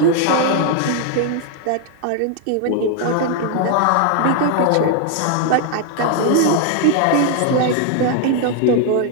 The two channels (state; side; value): different; both; correlation 0.00